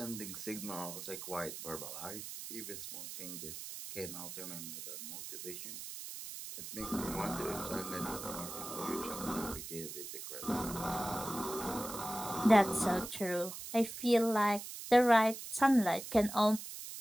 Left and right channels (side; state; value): right; noise; hiss, 9 dB below the sound